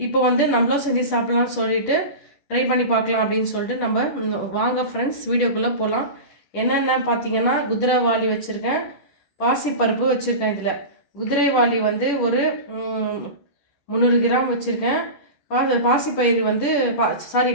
நம்மளும் செஞ்சு சாப்பிட்லான்னு சொல்லிட்டு ட்ரை பண்ணி பார்க்கலாம் அப்படின்னு சொல்லிட்டு நம்ம வாங்க ஃப்ரெண்ட்ஸ் வீடியோக்குள்ளே போகலாம். என்னென்ன பார்த்தீங்கன்னா, குதிரைவாலி வச்சுருக்கேன், பாசிப்பருப்பு வச்சுருக்கேன். இதில் குதிரைவாலி ஒரு 300 கிராம் வச்சுருக்கேன். பாசிப்பயிறு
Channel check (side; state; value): right; late; 10 ms